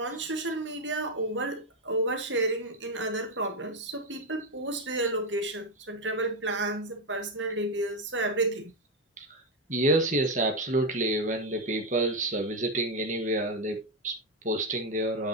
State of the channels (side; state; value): both; normal; correlation 0.07